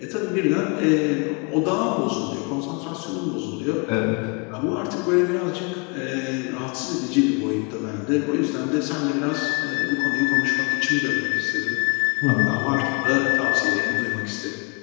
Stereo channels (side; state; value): right; quieter; 33.1 dB